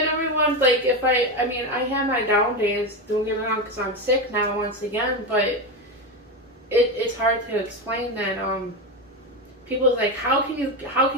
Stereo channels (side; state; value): both; normal; correlation 0.15